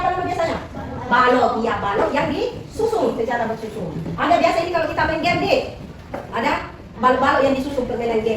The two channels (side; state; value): both; identical; correlation 1.00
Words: namanya biasanya? Balok. Iya, balok yang disusun secara bersusun. Ada biasa ini kalau kita main game deh. Ada balok-balok yang disusun permainan